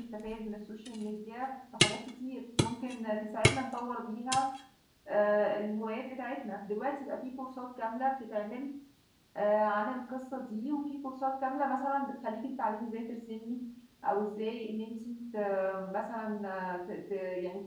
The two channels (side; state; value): both; identical; correlation 1.00